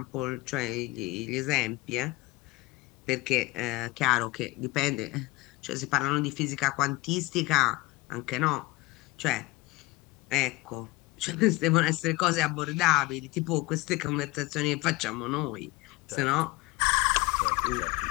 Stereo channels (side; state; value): right; quieter; 21.2 dB